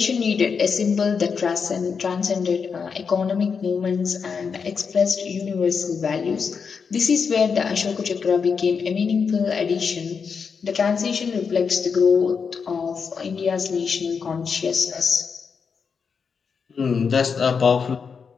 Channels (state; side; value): quieter; right; 5.9 dB